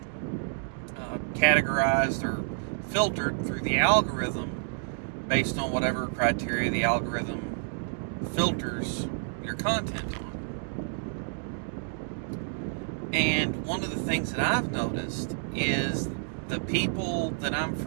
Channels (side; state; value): left; silent; digital silence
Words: categorized or filtered through the algorithm based on whatever criteria the algorithm filters your content on. And one of the things that I've noticed is the people that I'm